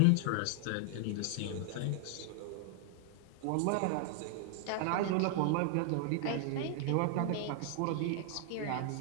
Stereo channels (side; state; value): both; different; correlation 0.00